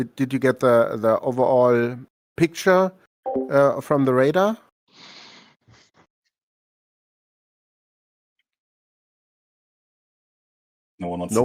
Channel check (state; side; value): identical; both; correlation 1.00